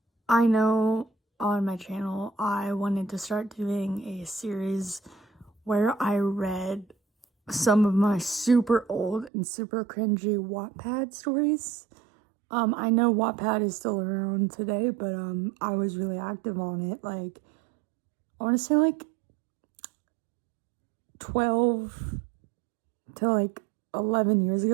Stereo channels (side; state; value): left; drops out; at 9.3 s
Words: I know on my channel I wanted to start doing a series where I read some of my super old and super cringy Wattpad stories. I know Wattpad is still around today, but I was really active on it. I want to say 12 to 11 years